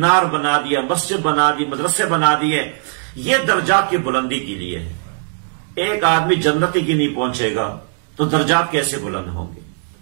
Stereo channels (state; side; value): silent; left; 67 dB below the other